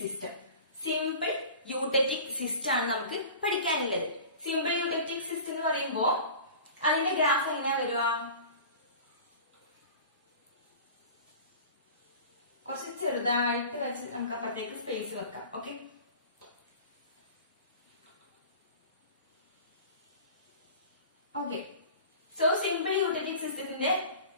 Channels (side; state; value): both; inverted; correlation -0.39